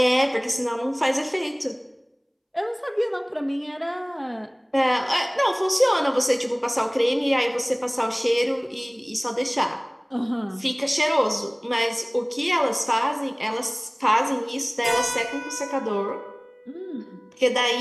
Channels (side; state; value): both; identical; correlation 1.00